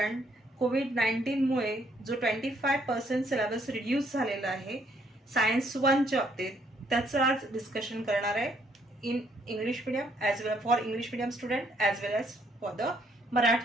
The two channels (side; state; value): both; normal; correlation 0.68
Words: कोविड-19 मुळे जो 25% syllabus reduce झालेला आहे science 1 च्या बाबतीत, त्याचं आज डिस्कशन करणार आहे in English medium as well for English medium student as well as for the